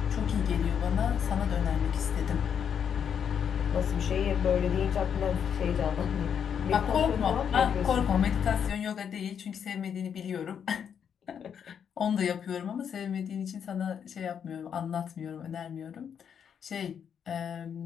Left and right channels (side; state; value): right; quieter; 7.9 dB